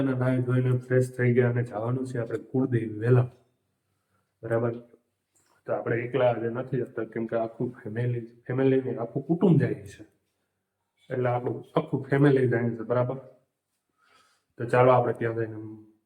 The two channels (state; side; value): identical; both; correlation 1.00